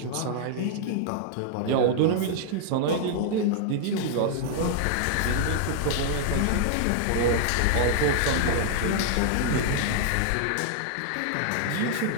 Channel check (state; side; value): different; both; correlation -0.01